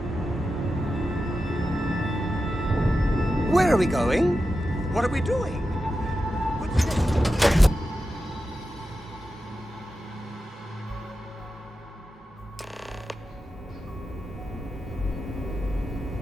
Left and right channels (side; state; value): both; normal; correlation 0.91